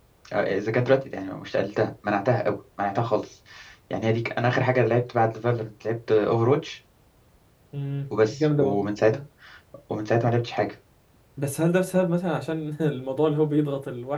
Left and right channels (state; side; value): identical; both; correlation 1.00